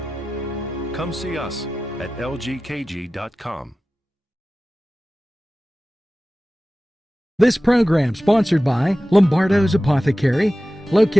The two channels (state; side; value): normal; both; correlation 0.96